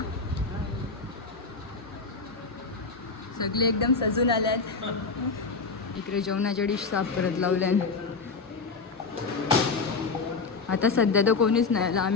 सगळे एकदम सजून आल्यात. इकडे जेवणाच्या डिश साफ करत लावल्या. आता सध्या तर कोणीच नाही आलं,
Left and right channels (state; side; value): quieter; right; 4.4 dB